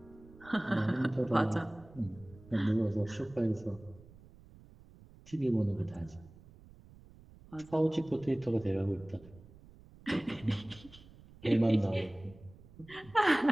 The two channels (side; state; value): right; noise; rumble, 22 dB below the sound